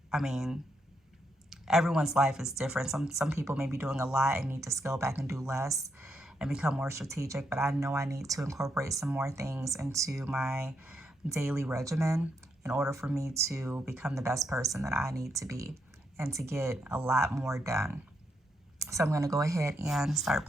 I mean, everyone's life is different. Some people may be doing a lot and need to scale back and do less and become more strategic. But I know I need to incorporate some more things into my daily regimen in order for me to become the best person that I need to be and to get a lot more done. So I'm going to go ahead and start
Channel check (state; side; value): normal; both; correlation 0.79